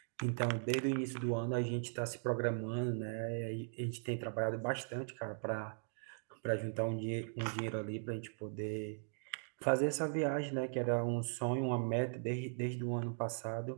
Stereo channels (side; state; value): left; silent; digital silence